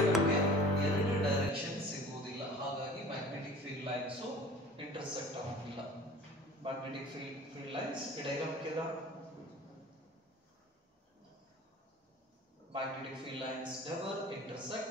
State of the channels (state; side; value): normal; both; correlation 0.44